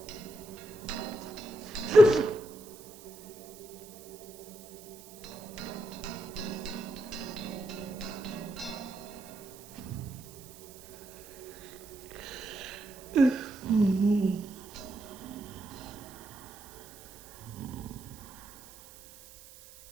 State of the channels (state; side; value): noise; right; hiss, 18 dB below the sound